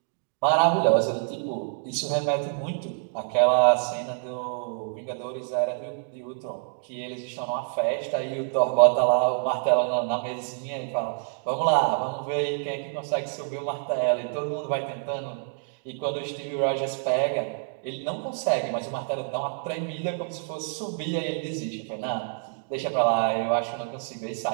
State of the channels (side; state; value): left; silent; digital silence